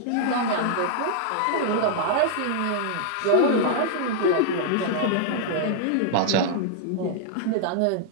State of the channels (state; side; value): different; both; correlation -0.01